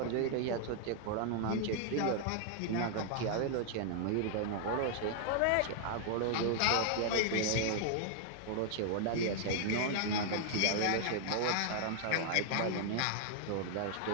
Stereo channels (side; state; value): both; different; correlation 0.00